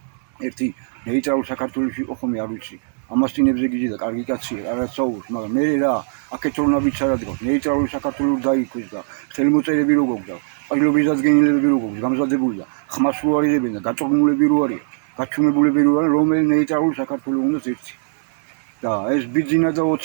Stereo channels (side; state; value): left; silent; digital silence